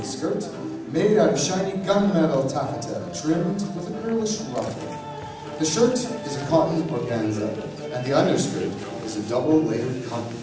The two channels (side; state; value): both; identical; correlation 1.00